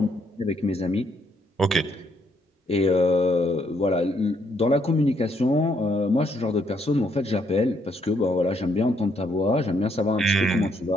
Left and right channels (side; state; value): both; normal; correlation 0.72